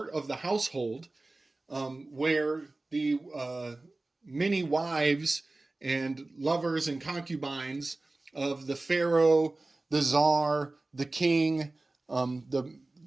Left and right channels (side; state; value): left; quieter; 3.0 dB